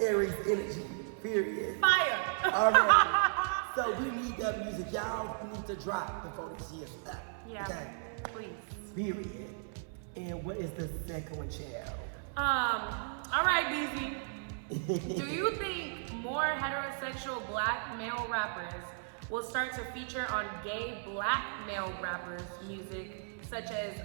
energy, period. Fire. All right. So we need that music. Y'all need to drop before this year's up. Yeah. Okay. Please. Period. And what is the second one, child? All right, Beezy. Do you think more heterosexual black male rappers will start to feature on gay black male rappers' music, such as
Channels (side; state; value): left; silent; 54 dB below the other